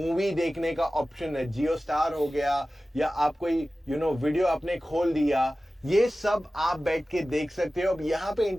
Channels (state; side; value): normal; both; correlation 0.96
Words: देखने का ऑप्शन है. जियो स्टार हो गया, या आप कोई वीडियो आपने खोल दिया, ये सब आप बैठ के देख सकते हो. अब यहाँ पे